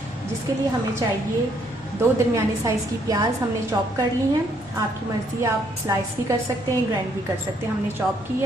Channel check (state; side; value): normal; both; correlation 0.69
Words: जिसके लिए हमें चाहिए 2 दरमियाने साइज़ की प्याज हमने चॉप कर ली हैं। आपकी मर्ज़ी, आप स्लाइस भी कर सकते हैं, ग्राइंड भी कर सकते हैं। हमने चॉप की